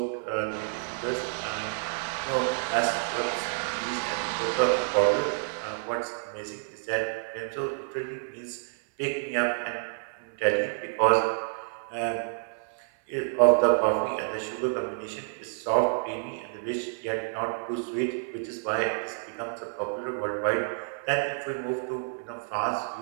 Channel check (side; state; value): left; silent; 59 dB below the other